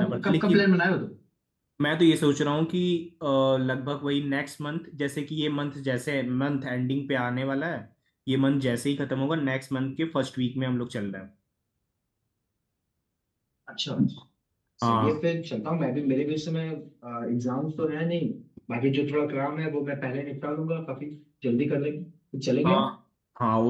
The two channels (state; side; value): identical; both; correlation 1.00